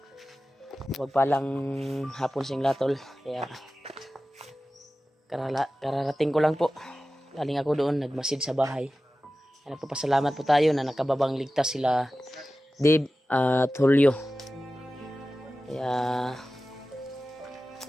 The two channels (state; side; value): normal; both; correlation 0.95